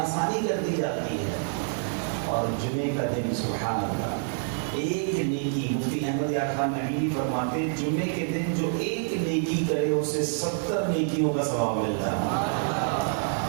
کر دی جاتی ہے۔ اور جمعے کا دن سبحان اللہ، ایک نیکی، مفتی احمد یار خان نبی فرماتے ہیں جمعے کے دن جو ایک نیکی کرے اسے 70 نیکیوں کا ثواب ملتا ہے۔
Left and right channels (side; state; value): left; silent; 60 dB below the other